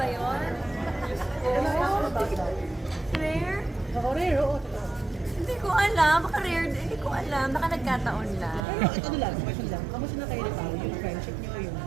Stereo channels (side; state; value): left; drops out; at 8.7 s